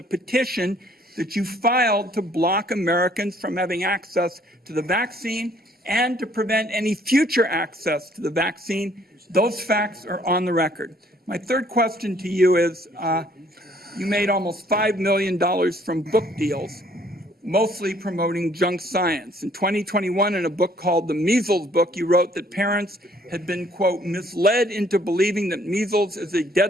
petition that you filed to block Americans from having access to the vaccine and to prevent any future access to the vaccine. Those facts are on the record. My third question to you is, you made almost $5 million from book deals, mostly promoting junk science. In 2021, in a book called The Measles Book, you wrote that parents had been, quote, misled into believing that measles is a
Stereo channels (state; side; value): normal; both; correlation 0.62